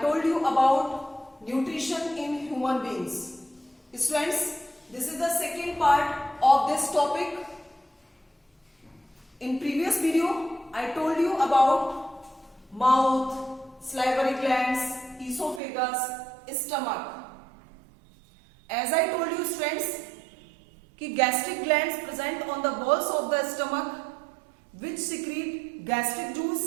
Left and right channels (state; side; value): drops out; left; at 15.6 s